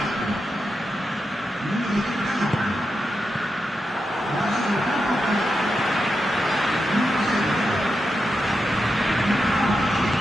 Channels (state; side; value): normal; both; correlation 0.88